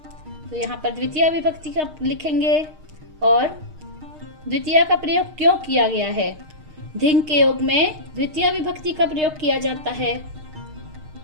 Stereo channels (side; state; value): left; late; 6.5 ms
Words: तो यहाँ पर द्वितीय विभक्ति का लिखेंगे। और द्वितीय का प्रयोग क्यों किया गया है? धिंग के योग में द्वितीय विभक्ति का प्रयोग किया जाता है।